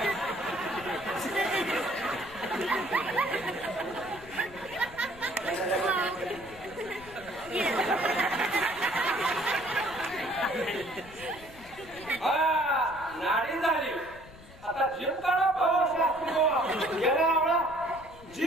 नाडी झाली आता जीव काढा गेला आवडा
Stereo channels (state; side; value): noise; left; rumble, 19 dB below the sound